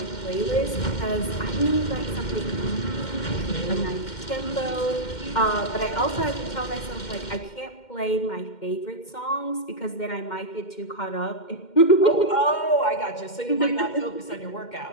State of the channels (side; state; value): right; late; 2.1 ms